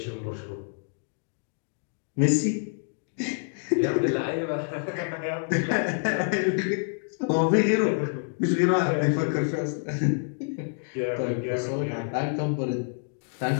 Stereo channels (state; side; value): silent; right; digital silence